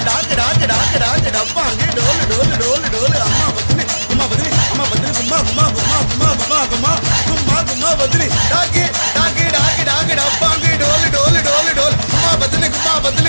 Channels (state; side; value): inverted; both; correlation -1.00